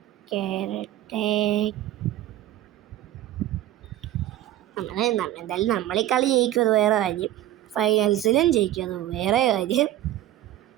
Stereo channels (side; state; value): left; quieter; 13.6 dB